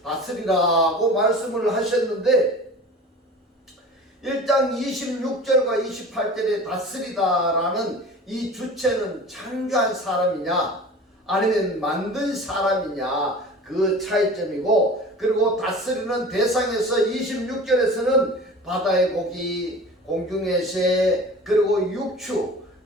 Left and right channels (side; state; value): both; normal; correlation 0.39